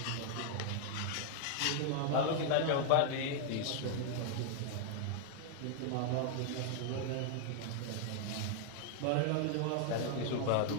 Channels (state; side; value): different; both; correlation 0.00